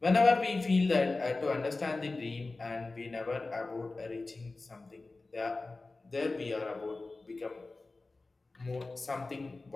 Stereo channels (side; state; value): right; quieter; 3.4 dB